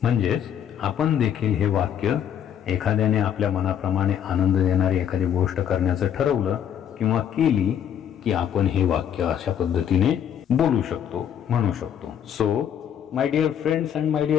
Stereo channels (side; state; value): right; quieter; 9.3 dB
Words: म्हणजेच आपण देखील हे वाक्य एखाद्याने आपल्या मनाप्रमाणे आनंद देणारी एखादी गोष्ट करण्याचं ठरवलं किंवा केली की आपण हे वाक्य अशा पद्धतीने बोलू शकतो, म्हणू शकतो. So my dear friends and my